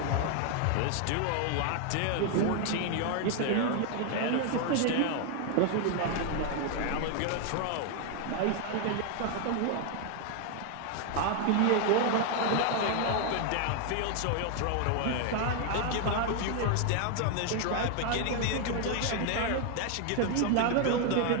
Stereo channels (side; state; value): both; different; correlation 0.00